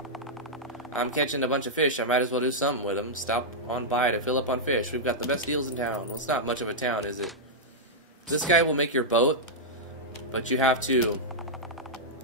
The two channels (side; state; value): both; normal; correlation -0.07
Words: I'm catching a bunch of fish. I might as well do something with them. Stop on by to fill up on fish. We've got the best deals in town. Well, it's not much of a town, is it? This guy will make your boat, but you have to